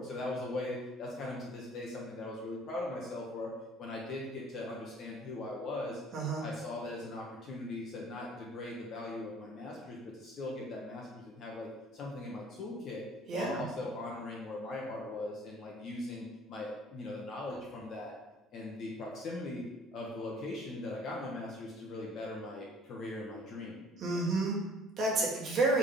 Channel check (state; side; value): normal; both; correlation 0.53